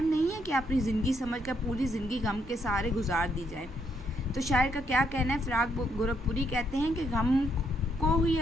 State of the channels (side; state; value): both; normal; correlation 0.74